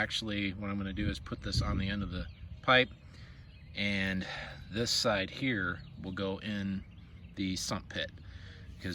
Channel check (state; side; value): identical; both; correlation 1.00